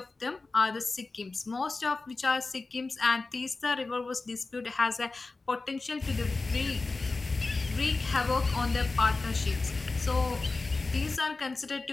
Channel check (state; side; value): quieter; right; 3.6 dB